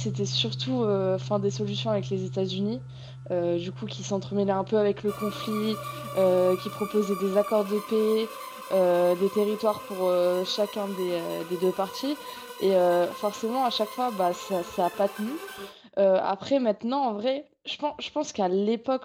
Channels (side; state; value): both; identical; correlation 1.00